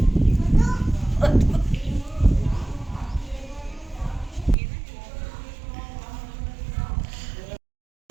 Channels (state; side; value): drops out; left; at 4.5 s